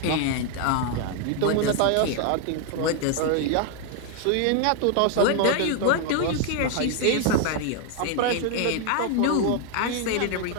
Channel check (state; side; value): different; both; correlation 0.01